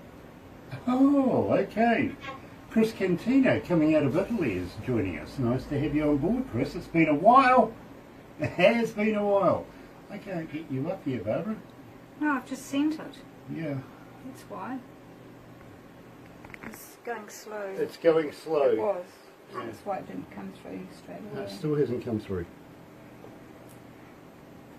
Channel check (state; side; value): identical; both; correlation 1.00